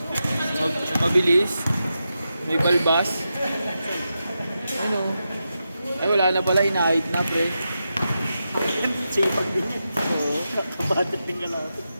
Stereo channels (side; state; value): both; inverted; correlation -0.88